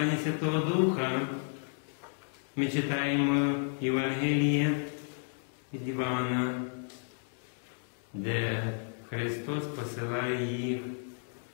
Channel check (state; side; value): silent; right; 56 dB below the other